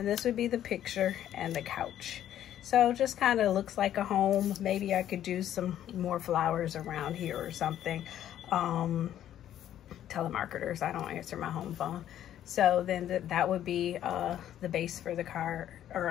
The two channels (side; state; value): right; quieter; 11.3 dB